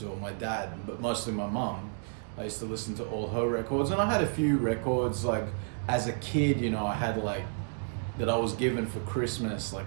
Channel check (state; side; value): silent; left; digital silence